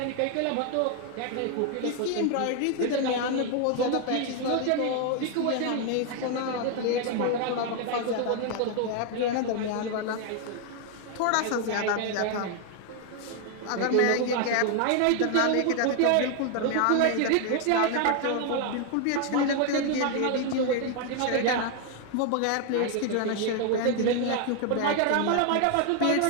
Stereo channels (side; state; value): both; different; correlation 0.01